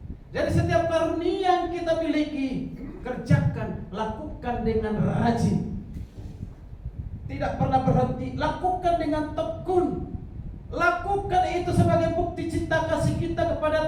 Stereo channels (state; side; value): identical; both; correlation 1.00